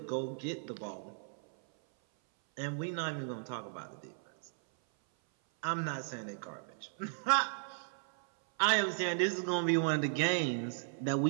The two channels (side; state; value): left; silent; 54 dB below the other